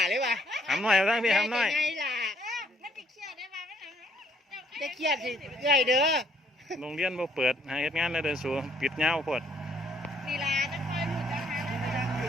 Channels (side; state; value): both; normal; correlation 0.67